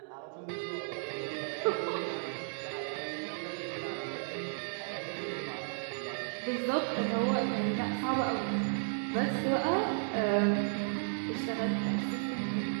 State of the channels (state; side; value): silent; left; digital silence